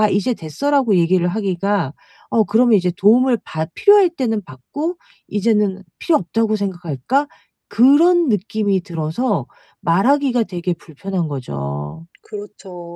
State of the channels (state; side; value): identical; both; correlation 1.00